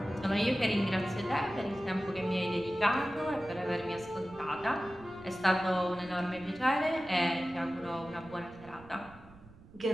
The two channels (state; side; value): noise; right; rumble, 21 dB below the sound